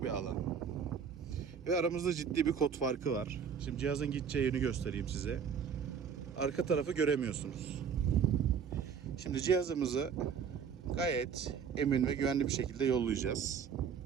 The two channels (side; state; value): left; quieter; 7.0 dB